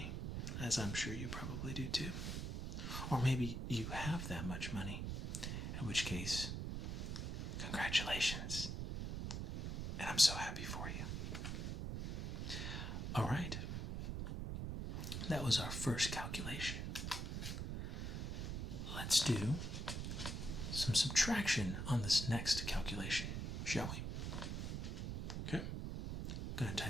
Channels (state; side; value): noise; right; rumble, 3 dB below the sound